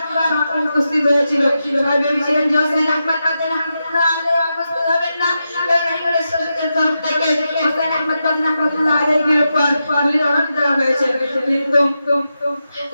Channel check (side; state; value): both; inverted; correlation -0.88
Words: উপস্থিত হয়েছিল। সবাই ভেবেছিলেন যে সৈয়দ আহমদ মাদানী রাহমাতুল্লাহ আলাইহি উপস্থিত হবেন না, কারণ ইংরেজ শাসকের তরফ থেকে সৈয়দ আহমদ মাদানী রাহমাতুল্লাহ আলাইহির উপর গুলির অর্ডার দেওয়া হয়েছে। কিন্তু